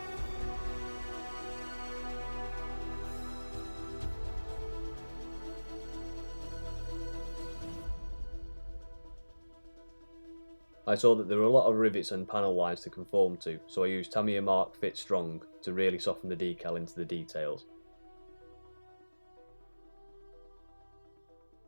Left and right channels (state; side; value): inverted; both; correlation -1.00